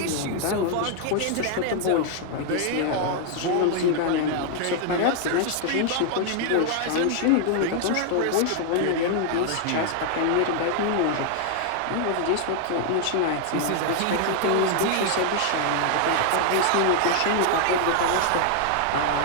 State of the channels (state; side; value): different; both; correlation 0.00